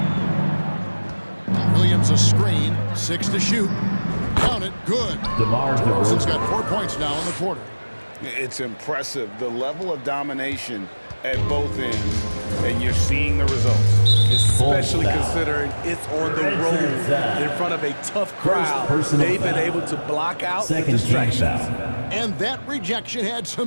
Williams a screen, 6 to shoot. Count it, good. DeMar DeRozan's DeRozan. got 4 points now in the quarter. It's impressive, the level of domination at both ends, and you're seeing the results. Especially Foul. considering it's on the road in front of a tough crowd. personal They've been foul. able to block out the Second team distractions. foul. And that rejection had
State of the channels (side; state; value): both; inverted; correlation -1.00